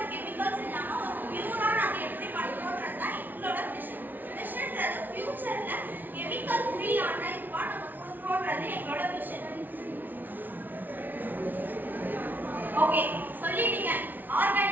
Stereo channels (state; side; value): late; left; 0.086 ms